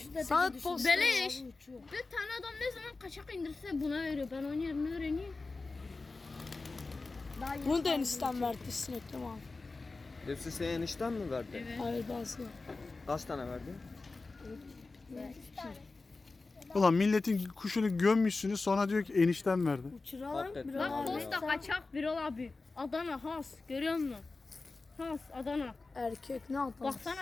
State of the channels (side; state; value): right; quieter; 3.7 dB